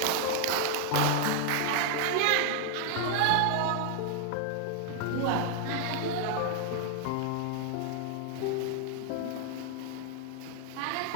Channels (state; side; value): different; both; correlation 0.00